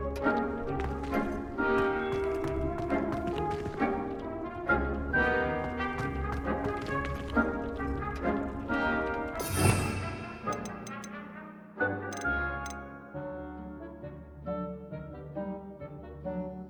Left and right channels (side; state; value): both; identical; correlation 1.00